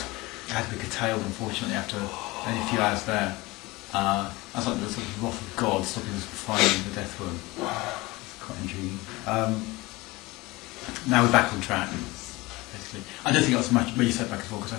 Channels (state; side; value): quieter; right; 21.7 dB